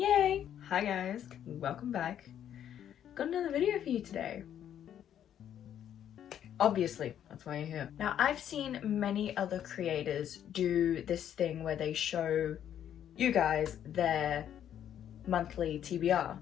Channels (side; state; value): right; quieter; 10.0 dB